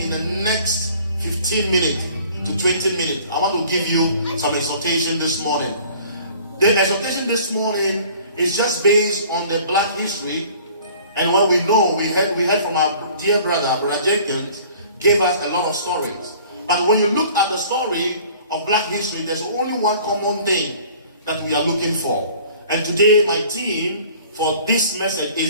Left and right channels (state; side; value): inverted; both; correlation -0.50